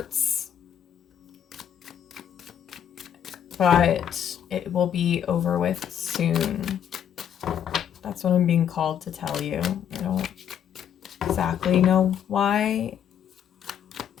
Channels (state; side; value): quieter; right; 9.2 dB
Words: but it will be over with soon. That's what I'm being called to tell you. I don't exactly know why.